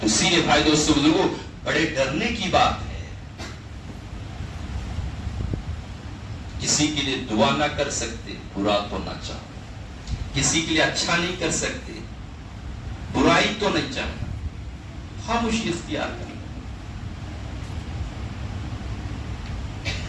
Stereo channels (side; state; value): both; identical; correlation 1.00